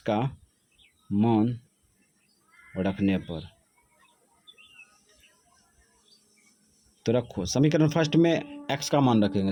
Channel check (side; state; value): both; identical; correlation 1.00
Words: मान रखने पर, तो रखो समीकरण फर्स्ट में एक्स का मान